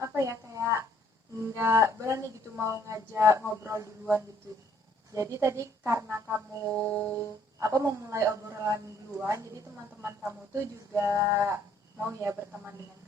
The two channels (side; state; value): both; normal; correlation 0.64